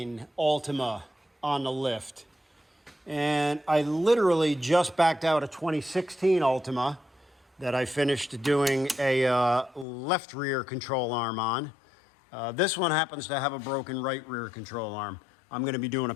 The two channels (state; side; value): drops out; right; at 9.9 s